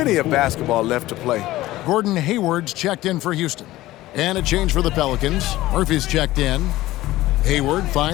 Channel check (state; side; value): quieter; right; 16.7 dB